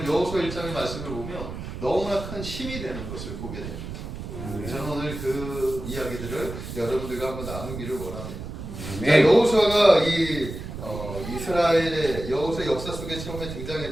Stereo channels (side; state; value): right; noise; rumble, 8 dB below the sound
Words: 여호수아 1장의 말씀을 보면 너무나 큰 힘이 되는 것을 보게 됩니다. 저는 오늘 그 이야기들을 여러분들과 한번 나누기를 원합니다. 자, 여호수아가 이 이스라엘의 여호수아 역사 속에 처음에